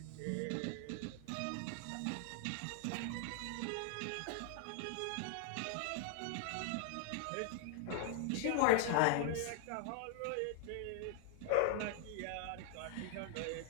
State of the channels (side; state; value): both; different; correlation 0.00